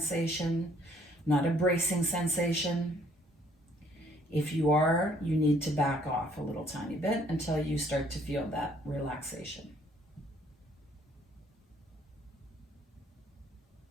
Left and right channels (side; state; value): both; normal; correlation 0.63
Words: not a bracing sensation. If you are, you need to back off a little tiny bit until you start to feel that relaxation.